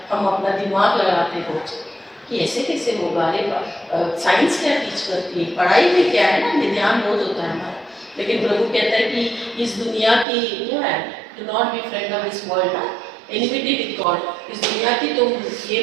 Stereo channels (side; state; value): left; drops out; at 10.2 s